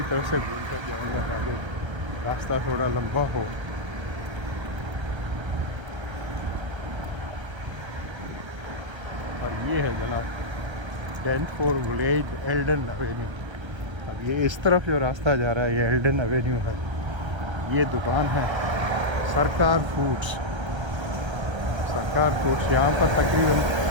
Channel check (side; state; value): left; late; 1.3 ms